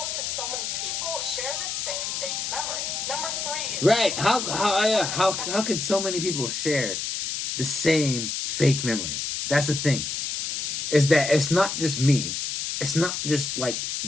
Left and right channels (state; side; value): noise; left; hiss, 3 dB below the sound